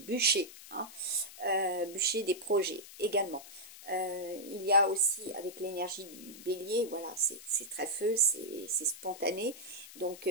hein, bûcher des projets également. Il y a aussi avec l'énergie du bélier, voilà, c'est très feu, c'est spontané, donc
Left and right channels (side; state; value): left; noise; hiss, 16 dB below the sound